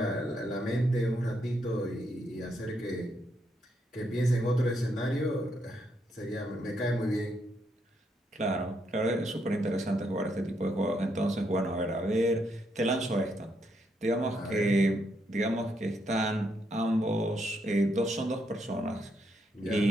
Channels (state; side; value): normal; both; correlation 0.77